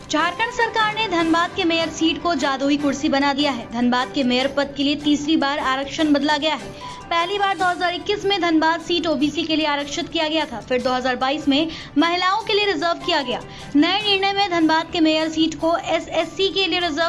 झारखंड सरकार ने धनबाद के मेयर सीट को जादुई कुर्सी बना दिया है। धनबाद के मेयर पद के लिए तीसरी बार आरक्षण बदला गया है। पहली बार 2021 में धनबाद सीट ओबीसी के लिए आरक्षित किया गया था, फिर 2022 में महिलाओं के लिए रिजर्व किया गया। नए निर्णय में धनबाद के मेयर सीट को एसएससी के लिए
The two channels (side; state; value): both; identical; correlation 1.00